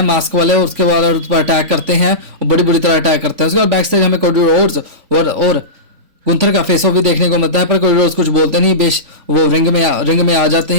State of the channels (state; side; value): late; left; 3.8 ms